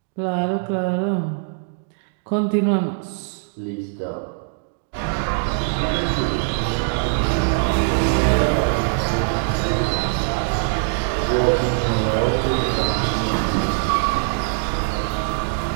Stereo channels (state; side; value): silent; left; digital silence